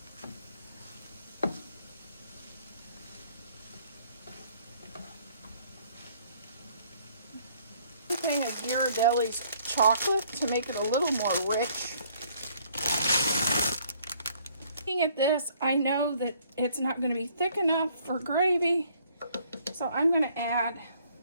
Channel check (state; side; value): inverted; both; correlation -0.62